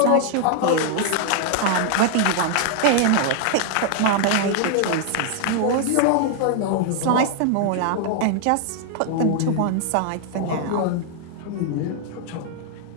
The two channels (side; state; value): both; different; correlation 0.00